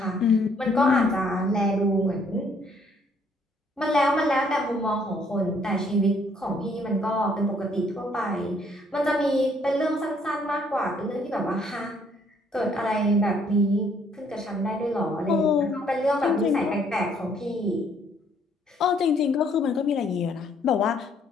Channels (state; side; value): normal; both; correlation 0.65